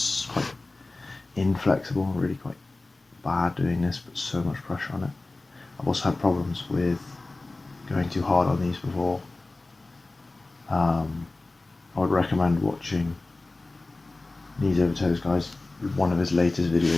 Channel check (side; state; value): right; quieter; 3.1 dB